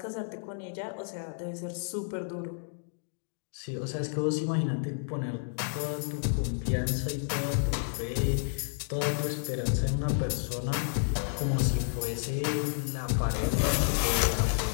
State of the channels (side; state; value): right; silent; digital silence